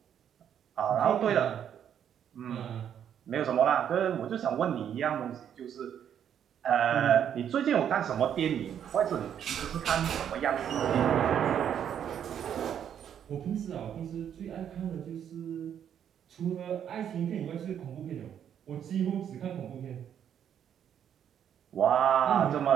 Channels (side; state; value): left; quieter; 9.1 dB